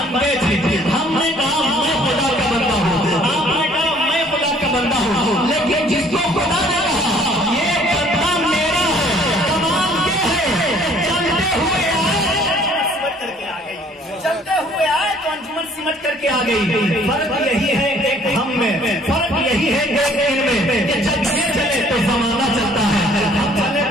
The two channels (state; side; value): normal; both; correlation 0.58